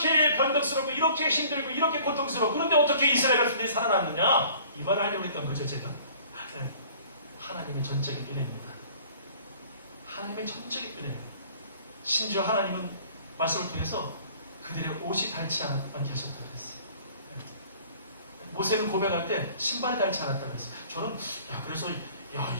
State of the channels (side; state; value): both; inverted; correlation -0.51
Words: 변덕스럽고 이렇게 힘들고 이렇게 고통스럽고, 그런데 어떻게 이스라엘 백성들이 살아났느냐, 이 말을 하려고 했던 거죠. 제가 하나님의 전적인 은혜입니다. 하나님의 전적인 은혜. 심지어 하나님은 말씀을 통해서 그들의 옷이 닳지 않게 하셨다고 그랬어요. 모세는 고백할 때 신발이 닳지 않았다고 그랬어요. 저는 그래서